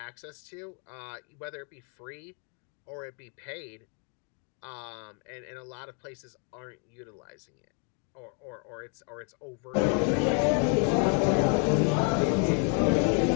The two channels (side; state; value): right; quieter; 37.9 dB